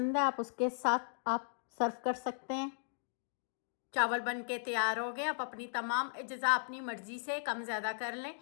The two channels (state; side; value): silent; right; digital silence